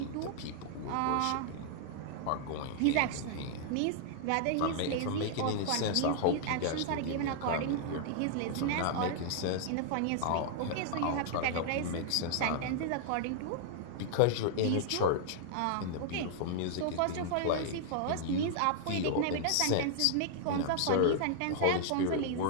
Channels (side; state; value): both; different; correlation -0.01